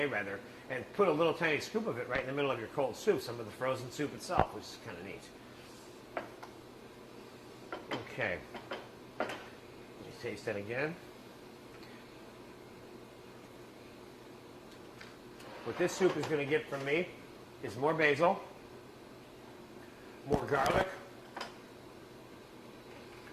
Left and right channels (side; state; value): both; identical; correlation 1.00